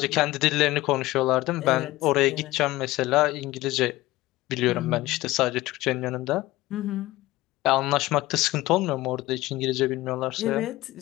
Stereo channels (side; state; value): right; quieter; 18.0 dB